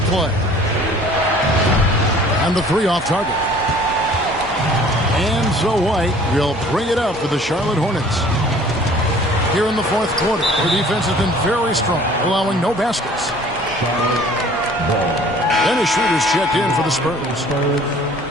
play. And the 3 off target. And so White will bring it up for the Charlotte Hornets. Here in the fourth quarter, their defense has been very strong, allowing no baskets. Dennis Schroeder's checked in for the Spurs.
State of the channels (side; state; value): both; normal; correlation 0.51